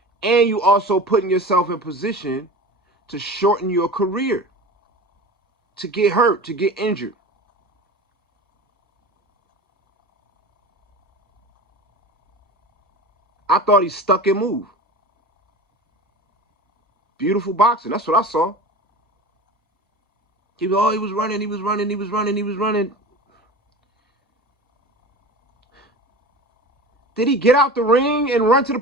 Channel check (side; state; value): both; normal; correlation 0.34